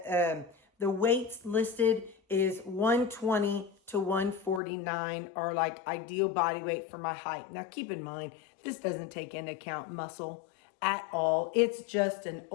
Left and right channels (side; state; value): right; drops out; at 4.6 s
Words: the weights listed is 120 to 149 are like ideal body weight for my height. Now keep in mind, this doesn't take into account muscle at all. It's just an